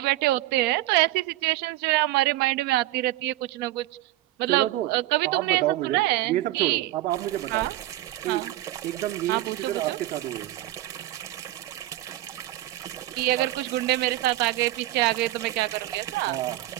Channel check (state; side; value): quieter; left; 16.2 dB